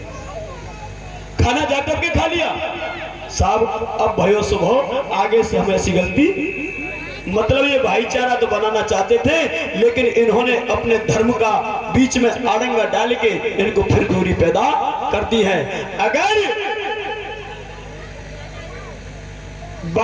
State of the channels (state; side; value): identical; both; correlation 1.00